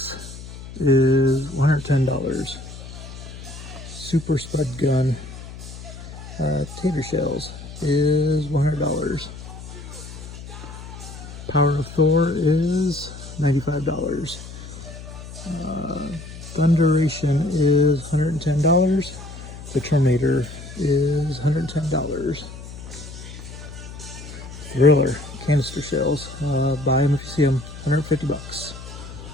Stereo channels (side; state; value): left; noise; hum, 13 dB below the sound